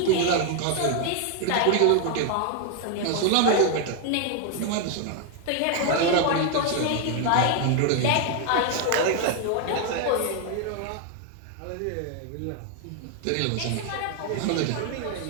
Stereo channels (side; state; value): both; different; correlation 0.00